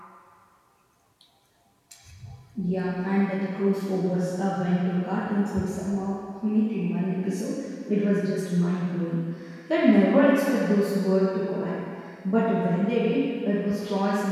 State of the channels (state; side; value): identical; both; correlation 1.00